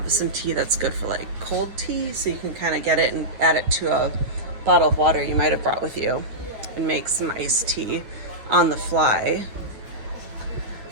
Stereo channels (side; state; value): left; late; 9.4 ms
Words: some tea that's good for like cold tea, so you can kind of get it and add it to a bottle of water you might have brought with you and make some iced tea on the fly.